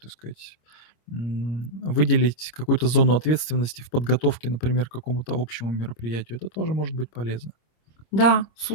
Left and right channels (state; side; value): late; right; 26 ms